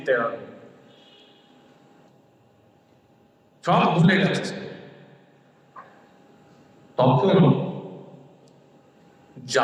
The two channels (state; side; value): identical; both; correlation 1.00